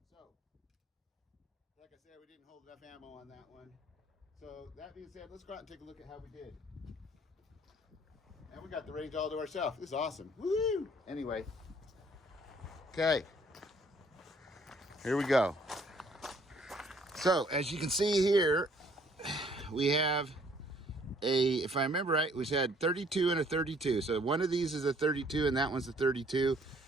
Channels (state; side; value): normal; both; correlation 0.62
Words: So, like I said, we didn't hold enough ammo on that one. So, that being said, let's go out and take a look at how we did. And we got the range all to ourselves. This is awesome. Woo! Anyway. Okay. Here we go. So, as you can see here, we have if I remember right, we had 32 and a 32. So, one of these is a 32 and that one's a 32.